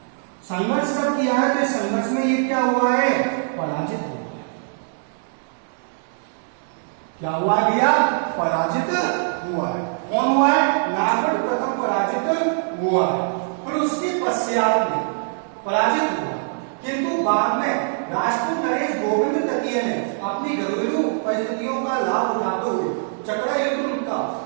संघर्ष कब किया है, तो संघर्ष में ये क्या हुआ है, पराजित हुआ है। क्या हुआ भैया, पराजित हुआ है। कौन हुआ है, नागौर प्रथम पराजित हुआ है, फिर उसके पश्चात में पराजित हुआ, किंतु बाद में राजपूत नरेश गोविंद तृतीय ने अपनी घरेलू परिस्थितियों का लाभ उठाते हुए चकरा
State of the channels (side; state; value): left; silent; digital silence